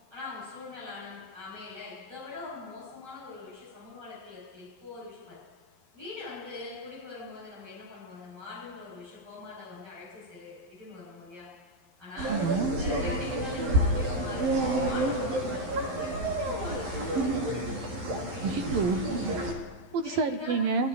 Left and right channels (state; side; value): late; left; 11 ms